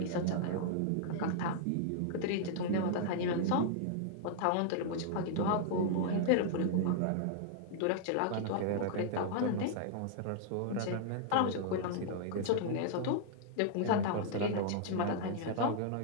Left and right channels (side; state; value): both; different; correlation -0.01